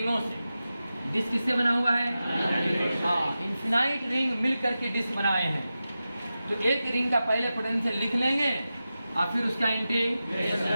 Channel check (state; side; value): inverted; both; correlation -0.93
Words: से। डिस्क किससे बना हुआ है? हाँ, इनफिनाइट रिंग मिल करके डिस्क बनाए हैं। तो एक रिंग का पहले पोटेंशियल लिख लेंगे और फिर उसका